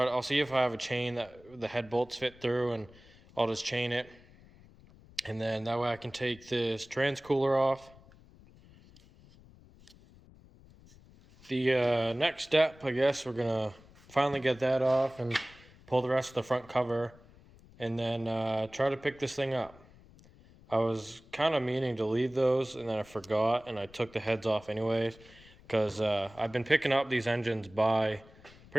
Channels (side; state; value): left; noise; rumble, 24 dB below the sound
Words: see if I have a chain that the head bolts fit through, and I'll just chain it, and then that way I can take this trans cooler off. The next step, I guess, we're gonna finally get that off and pull the rest of the front cover, and then try to pick this thing up. I was kind of meaning to leave those, and then I forgot, and I took the heads off anyways, because I've been picking up these engines